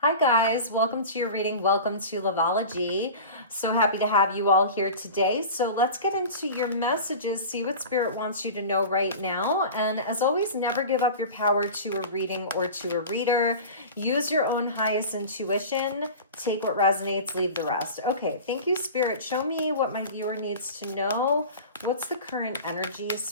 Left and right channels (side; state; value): both; inverted; correlation -0.34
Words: Hi guys, welcome to your reading. Welcome to Loveology. So happy to have you all here today. So let's get into your messages, see what Spirit wants you to know right now. And as always, never give up your power to a reading or to a reader. Use your own highest intuition. Take what resonates, leave the rest. Okay, thank you, Spirit. Show me what my viewer needs to know. What's the current energy,